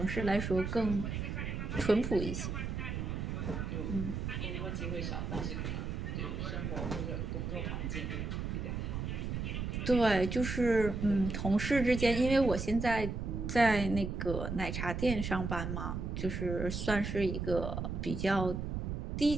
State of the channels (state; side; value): noise; right; rumble, 3 dB below the sound